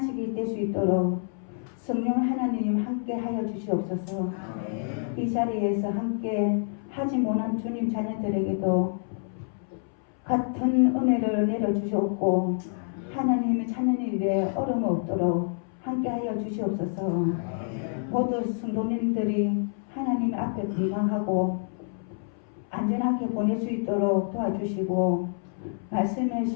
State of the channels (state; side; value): silent; right; 60 dB below the other